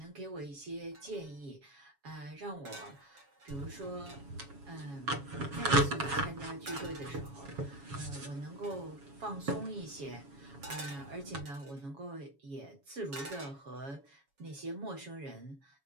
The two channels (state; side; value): late; left; 7.2 ms